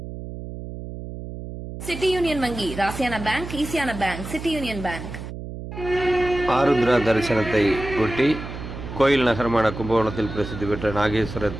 City union வங்கி ராசியான பேங்க், ஈஸியான bank city union bank. Arudra தரிசனத்தை ஒட்டி கோயில் நகரமான கும்பகோணத்தில் பிரசித்தி பெற்ற நாகேஸ்வரர்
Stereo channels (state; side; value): noise; right; hum, 10 dB below the sound